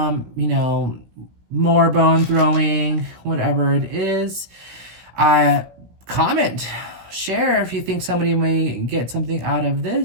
know, more bone throwing, whatever it is, comment, share if you think somebody may get something out of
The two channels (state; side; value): late; left; 17 ms